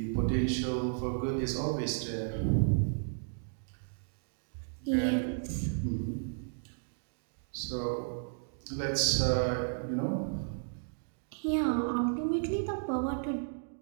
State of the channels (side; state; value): left; silent; digital silence